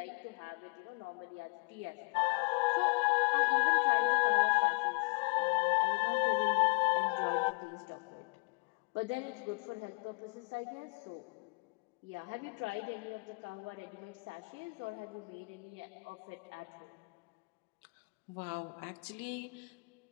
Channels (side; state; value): right; quieter; 31.6 dB